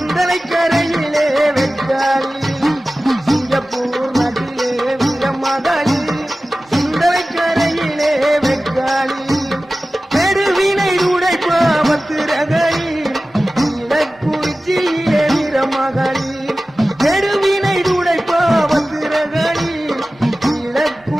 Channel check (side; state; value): both; normal; correlation 0.96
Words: கரையிலே வெக்காளி சிங்கப்பூர் நாட்டிலே வீரமகாளி சிந்தனை கரையிலே வெக்காளி பெருவினை உடைப்பாவத்து ரகளி இலக்குறிச்சியிலே வீரமகாளி பெருவினை உடைப்பாவத்து ரகளி